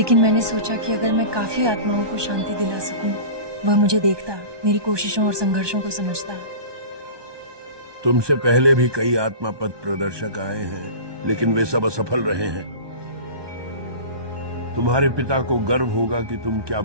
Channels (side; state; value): left; late; 1.2 ms